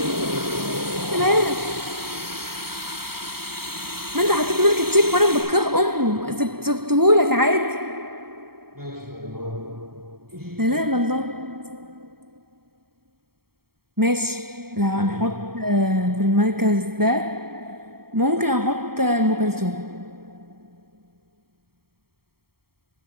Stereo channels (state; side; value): late; left; 0.95 ms